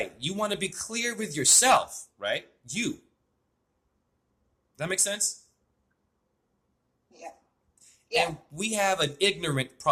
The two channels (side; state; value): both; identical; correlation 1.00